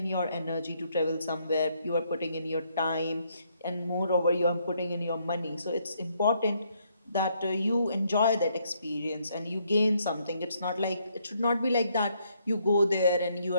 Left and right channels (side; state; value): both; inverted; correlation -0.72